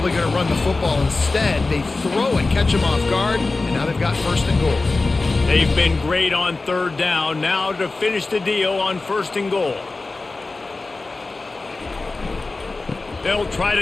going to run the football instead. They throw it, catch them off guard, and now they've got 1st and goal. They've been great on 3rd down. Now to finish the deal on 1st and goal. They'll try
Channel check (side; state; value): right; quieter; 3.5 dB